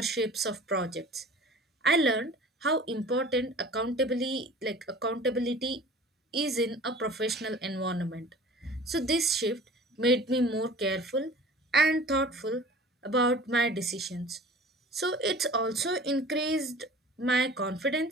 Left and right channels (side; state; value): both; normal; correlation 0.43